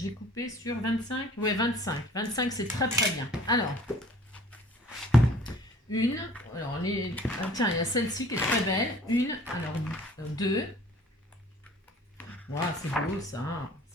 coupé sur 25. Ouais, 25. 25, c'est très très bien. Alors, une. Alors, tiens, il y a celle-ci qui est très belle. Une. Alors, deux. Wow, c'est beau ça.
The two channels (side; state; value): both; normal; correlation 0.51